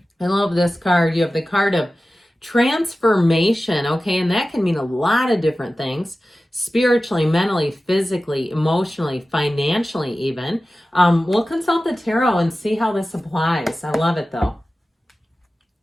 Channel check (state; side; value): normal; both; correlation 0.95